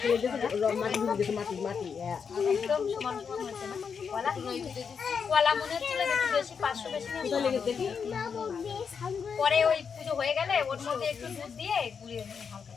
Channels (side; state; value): right; quieter; 6.3 dB